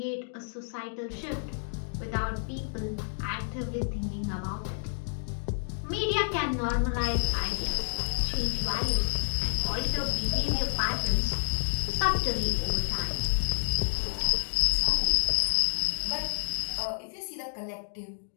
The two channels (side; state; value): right; silent; digital silence